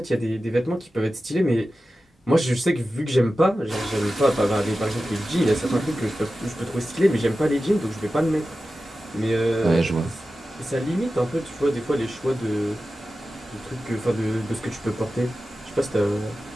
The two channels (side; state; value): both; normal; correlation 0.94